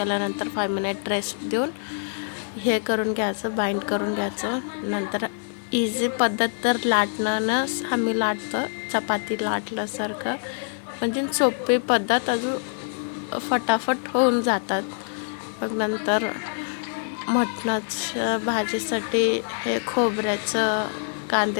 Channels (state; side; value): silent; right; digital silence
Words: 5 मिनिट रेस्ट देऊन हे करून घ्यायचं, बाइंड करून घ्यायचं. नंतर इझी पद्धत तर लाटणंच आम्ही लाटतो, चपाती लाटल्यासारखं. म्हणजे सोपी पद्धत, अजून फटाफट होऊन जातात. मग नंतर मटणाच्या भाजीसाठी हे खोबऱ्याचं,